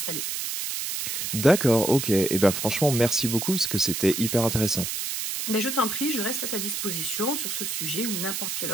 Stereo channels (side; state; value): right; noise; hiss, 3 dB below the sound